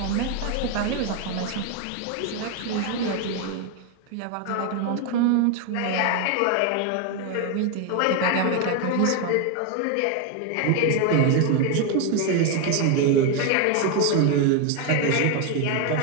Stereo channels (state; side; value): different; both; correlation 0.01